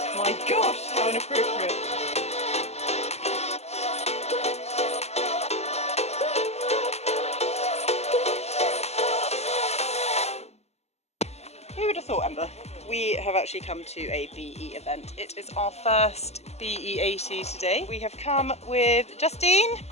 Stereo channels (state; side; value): late; right; 0.31 ms